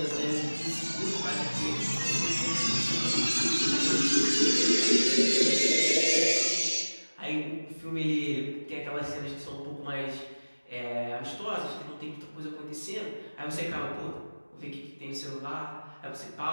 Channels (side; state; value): both; inverted; correlation -1.00